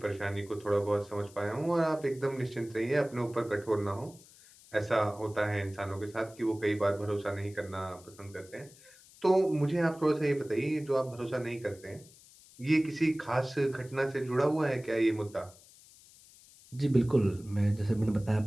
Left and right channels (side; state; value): left; noise; hiss, 24 dB below the sound